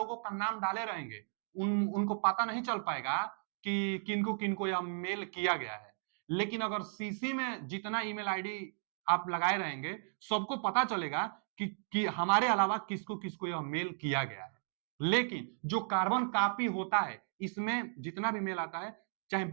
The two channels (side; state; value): left; silent; digital silence